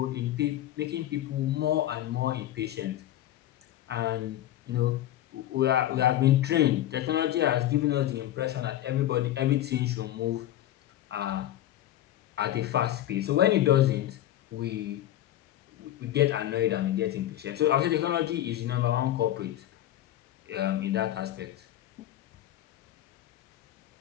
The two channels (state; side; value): quieter; right; 13.1 dB